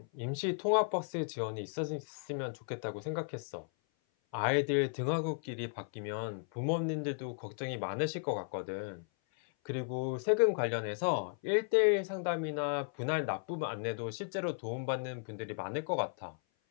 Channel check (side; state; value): right; silent; 54 dB below the other